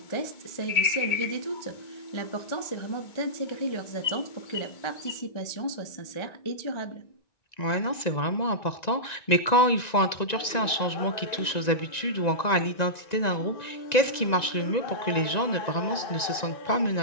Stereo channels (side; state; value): right; late; 1.9 ms